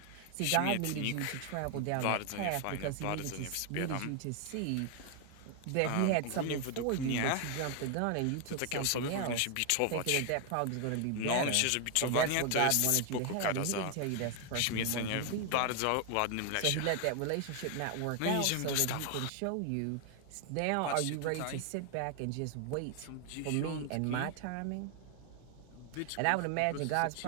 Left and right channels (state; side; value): different; both; correlation 0.00